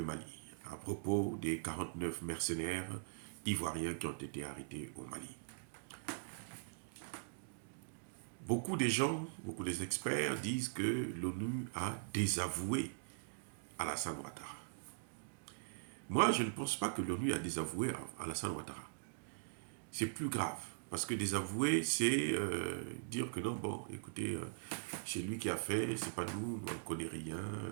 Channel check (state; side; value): silent; left; digital silence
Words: Mali, à propos des 49 mercenaires ivoiriens qui ont été arrêtés au Mali. Beaucoup des gens, beaucoup des experts disent que l'ONU a désavoué Alassane Ouattara. Moi, je ne pense pas que l'ONU a désavoué Alassane Ouattara. C'est plus grave, parce que désavouer, c'est dire que non, bon, écoutez, c'est lui qui a fait, c'est pas nous, on ne connaît rien,